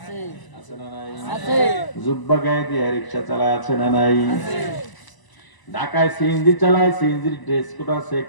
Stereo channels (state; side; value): late; right; 1.0 ms